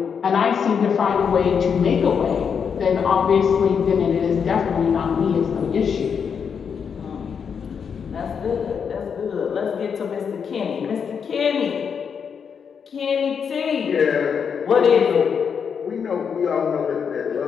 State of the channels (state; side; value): quieter; right; 6.8 dB